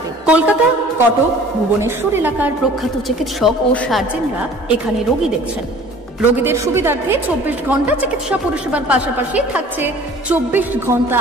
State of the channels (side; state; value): both; normal; correlation 0.48